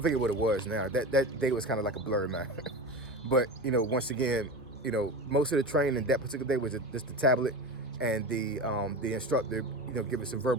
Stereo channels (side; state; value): both; normal; correlation 0.26